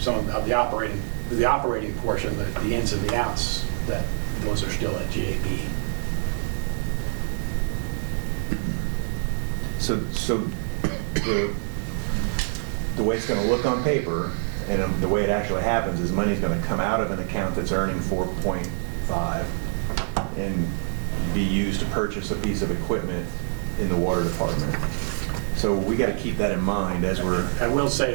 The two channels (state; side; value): silent; left; 61 dB below the other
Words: of the operating portion, the ins and the outs, those are still at GAB. So the way it's going to look on paper, and the way it actually happens, is money's going to come out of an account that's earning 4.5 and be used to purchase a piece of equipment in the water department. So we got to keep that in mind as we're. I will say